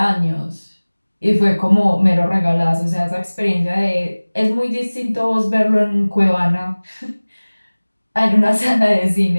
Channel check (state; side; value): inverted; both; correlation -1.00